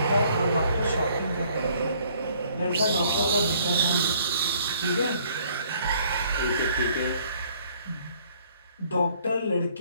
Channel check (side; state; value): both; inverted; correlation -0.61